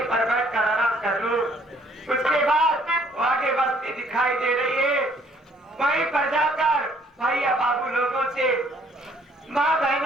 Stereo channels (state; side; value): normal; both; correlation 0.62